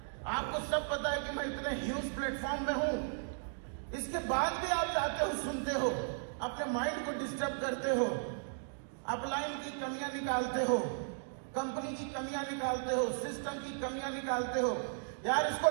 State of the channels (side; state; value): left; silent; digital silence